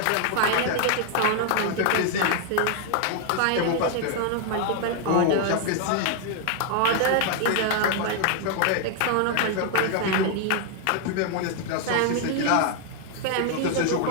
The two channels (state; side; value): different; both; correlation 0.00